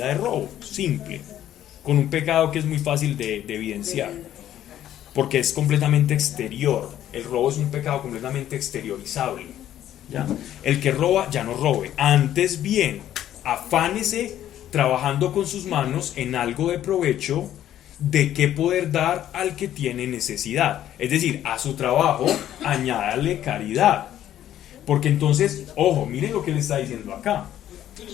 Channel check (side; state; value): right; quieter; 11.8 dB